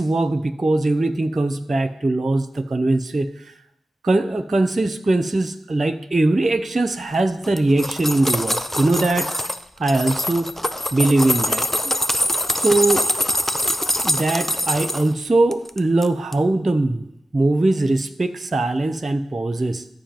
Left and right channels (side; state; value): both; normal; correlation 0.92